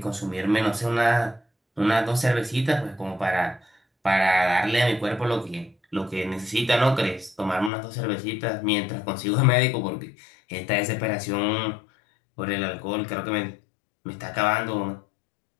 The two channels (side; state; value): right; drops out; at 7.7 s